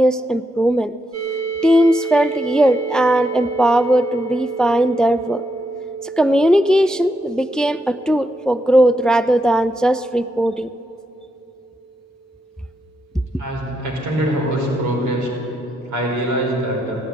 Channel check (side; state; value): both; normal; correlation 0.81